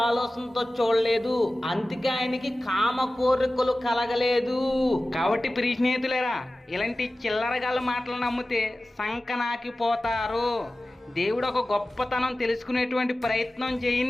ఆలోచనతో చూడలేదు. అందుకే ఆయనకి కామ కోరికలు కలగలేదు. కాబట్టి ప్రియ స్నేహితులారా, ఇలాంటి చిల్లరగాళ్ళ మాటలు నమ్మితే సంకనాకిపోతారు. దేవుడు ఒక గొప్పతనం తెలుసుకునేటువంటి ప్రయత్నం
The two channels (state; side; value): normal; both; correlation 0.96